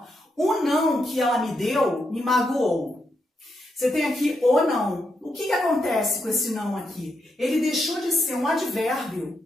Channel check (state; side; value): normal; both; correlation 0.82